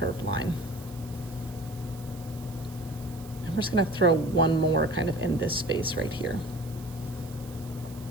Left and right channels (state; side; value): noise; right; hiss, 20 dB below the sound